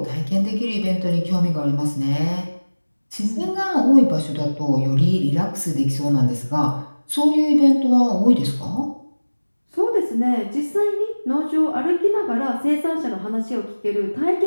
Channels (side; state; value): both; inverted; correlation -1.00